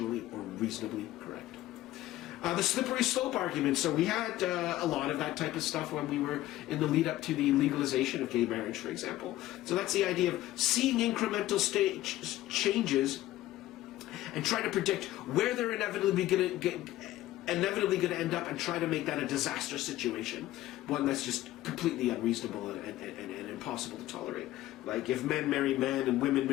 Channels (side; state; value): right; quieter; 15.3 dB